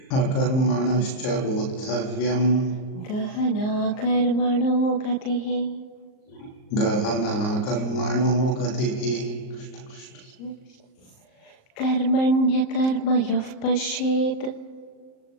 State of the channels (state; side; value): late; right; 38 ms